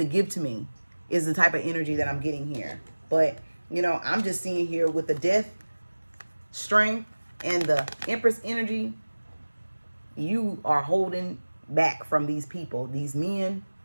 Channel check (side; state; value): both; inverted; correlation -1.00